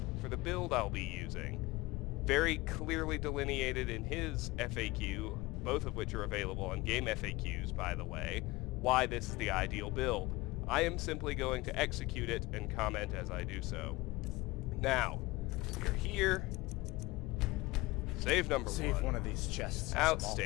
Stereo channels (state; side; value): quieter; right; 21.2 dB